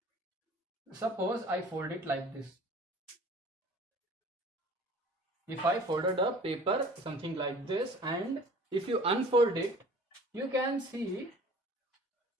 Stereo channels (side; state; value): both; normal; correlation 0.47